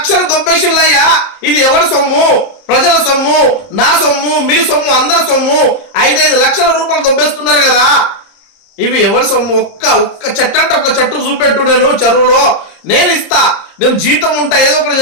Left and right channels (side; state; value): right; late; 30 ms